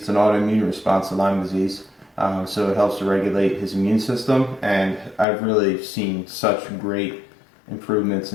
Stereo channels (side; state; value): right; drops out; at 5.2 s